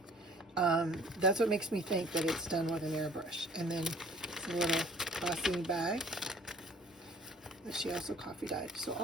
That's what makes me think that it's done with an airbrush. And then a little glossy bag that she also coffee dyed. So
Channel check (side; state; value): both; normal; correlation 0.53